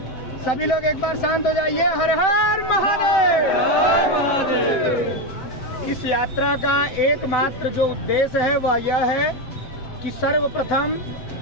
सभी लोग एक बार शांत हो जाइए। हर हर महादेव। इस यात्रा का एकमात्र जो उद्देश्य है वह यह है कि सर्वप्रथम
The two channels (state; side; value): late; right; 7.9 ms